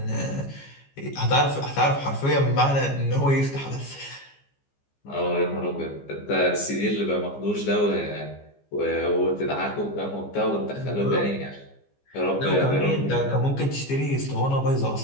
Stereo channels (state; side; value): late; right; 15 ms